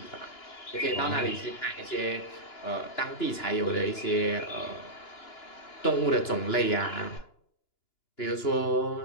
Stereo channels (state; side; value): late; right; 2.9 ms